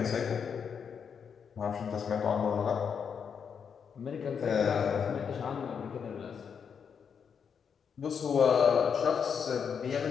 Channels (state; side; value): quieter; right; 6.9 dB